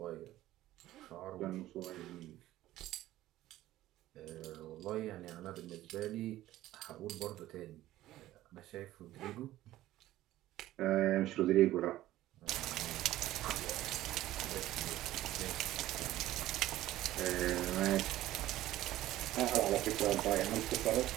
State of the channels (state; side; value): quieter; left; 14.9 dB